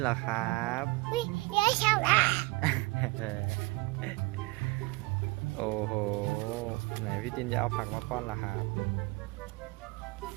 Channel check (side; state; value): left; quieter; 23.3 dB